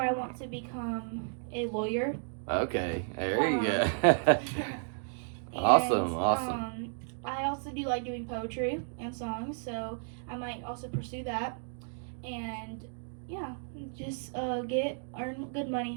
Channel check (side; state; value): left; silent; 56 dB below the other